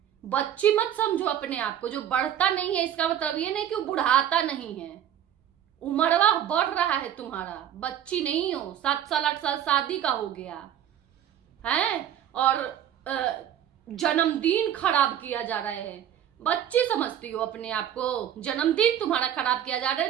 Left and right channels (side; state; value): left; quieter; 10.4 dB